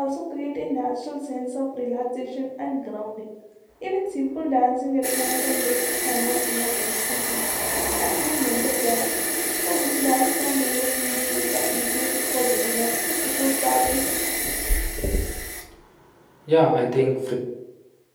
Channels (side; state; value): both; identical; correlation 1.00